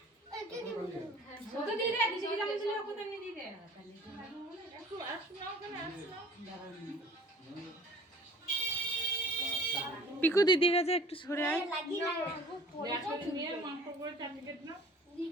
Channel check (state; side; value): normal; both; correlation 0.48